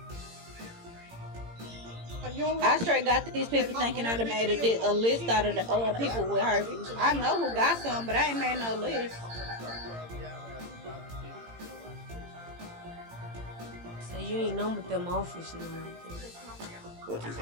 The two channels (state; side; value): late; left; 18 ms